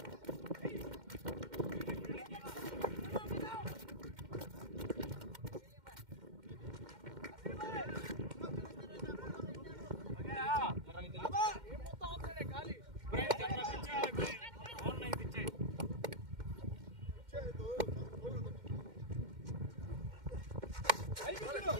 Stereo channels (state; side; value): late; left; 2.1 ms